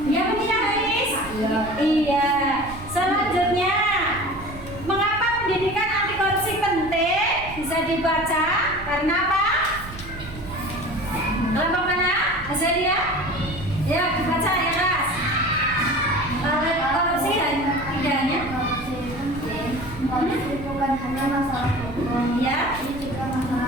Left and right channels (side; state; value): right; noise; rumble, 14 dB below the sound